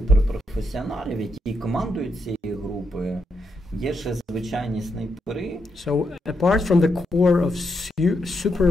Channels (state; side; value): normal; both; correlation 0.81